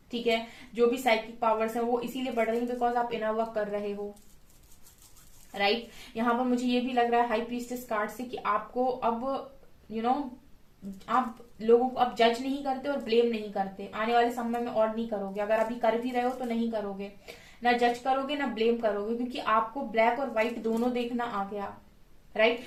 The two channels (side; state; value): both; identical; correlation 1.00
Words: ठीक है। जो भी साइकिक पावर्स है वो इसीलिए बढ़ रही है बिकॉज आप इनर वर्क कर रहे हो। राइट, यहाँ पर मुझे ये भी लग रहा है हाई प्रीस्टेस कार्ड से कि आपको अब आप लोगों को अब जज नहीं करते और ब्लेम नहीं करते, आने वाले समय में और नहीं करोगे। अगर अभी कर भी रहे हो तो नहीं करोगे, ना जज करोगे ना ब्लेम करोगे, क्योंकि आपको ब्लैक और व्हाइट दोनों देखना आ गया। राइट,